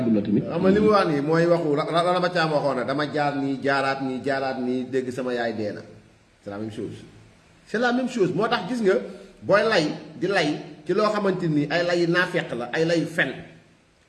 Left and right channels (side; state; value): both; identical; correlation 1.00